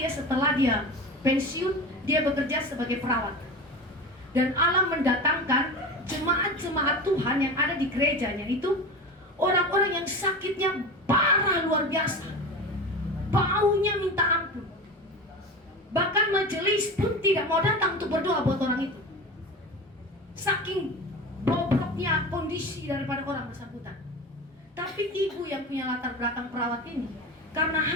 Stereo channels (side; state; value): both; normal; correlation 0.28